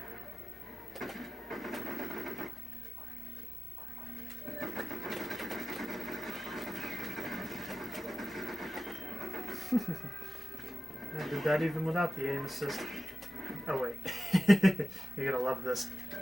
I did that even without the aim assist. Oh wait. You're gonna love this.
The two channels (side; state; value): both; normal; correlation 0.95